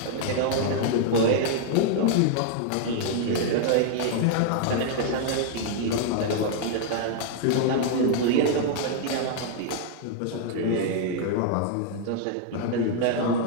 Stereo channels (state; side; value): different; both; correlation -0.01